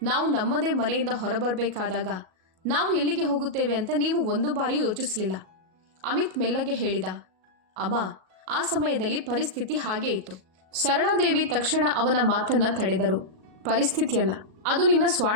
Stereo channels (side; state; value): left; late; 37 ms